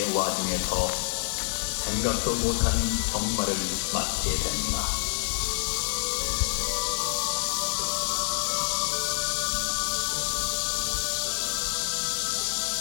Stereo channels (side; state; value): right; silent; digital silence